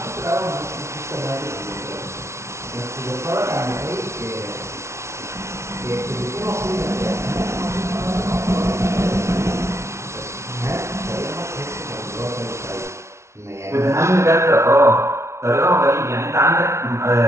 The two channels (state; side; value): late; left; 0.13 ms